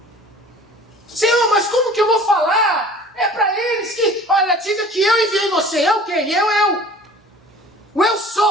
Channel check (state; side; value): normal; both; correlation 0.46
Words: Senhor, mas como que eu vou falar? É para eles que, olha, diga que eu enviei você. Eu quem? Eu. O eu